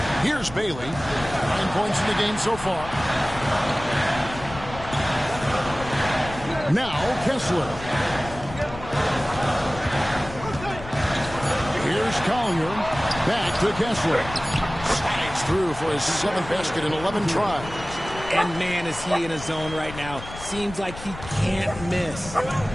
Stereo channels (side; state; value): left; noise; rumble, 13 dB below the sound